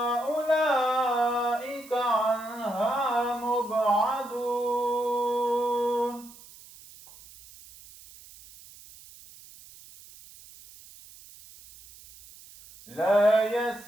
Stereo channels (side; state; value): right; noise; hiss, 21 dB below the sound